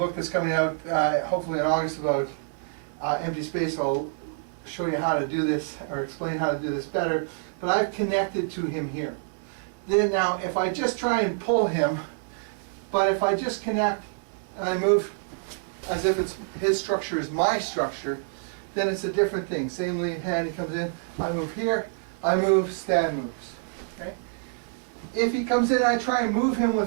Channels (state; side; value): silent; left; 60 dB below the other